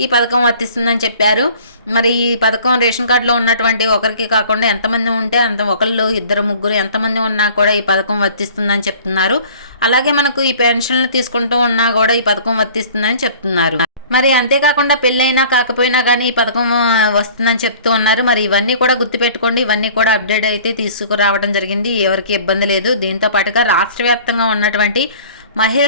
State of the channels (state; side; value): inverted; both; correlation -0.48